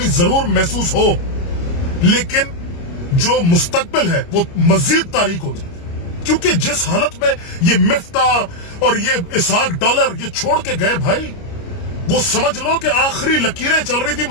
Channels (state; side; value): late; right; 29 ms